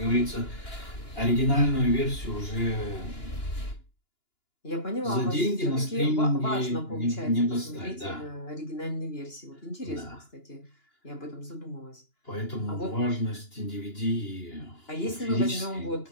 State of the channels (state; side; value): late; right; 2.9 ms